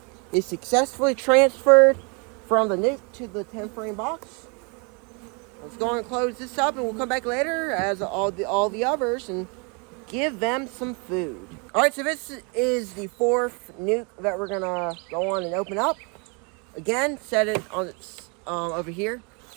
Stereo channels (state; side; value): quieter; left; 33.4 dB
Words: is successfully transferred from the nuke to the 10-frame box. Let's go and close this up, and we'll come back later as all the others and give them some food. All right, so this is the 4th nuke that we're gonna go on and open up. Again, set it on its over here,